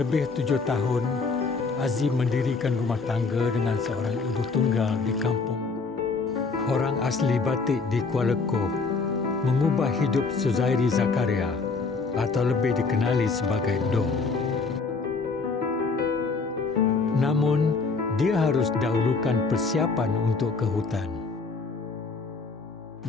7 tahun, Azim mendirikan rumah tangga dengan seorang ibu tunggal di kampung. Orang asli Batik di Kuala Koh mengubah hidup Suzairi Zakaria atau lebih dikenali sebagai Dong. Namun, dia harus dahulukan persiapan untuk ke hutan.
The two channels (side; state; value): right; quieter; 4.3 dB